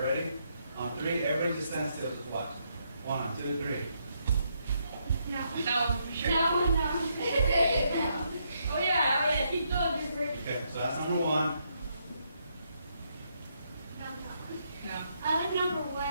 Ready? On 3, everybody just stand still. Just watch. 1, 2, 3. No. No, for sure. No. Oh yeah, keep going, you're freaking. Okay, so that's number 1. No. Number 1.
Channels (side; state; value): both; inverted; correlation -0.76